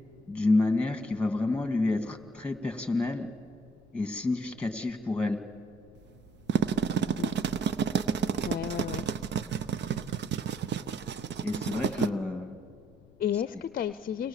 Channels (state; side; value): noise; left; rumble, 27 dB below the sound